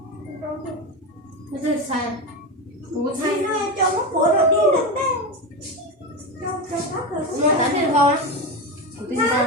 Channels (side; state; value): both; normal; correlation 0.17